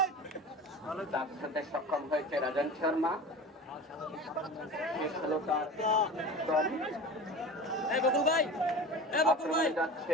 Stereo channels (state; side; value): normal; both; correlation 0.34